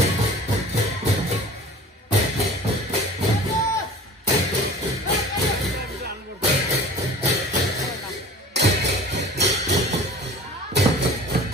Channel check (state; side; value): normal; both; correlation 0.42